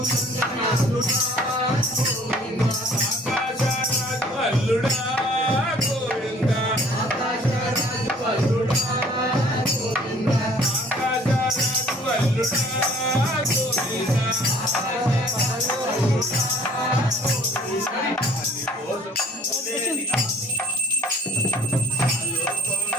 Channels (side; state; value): both; normal; correlation 0.54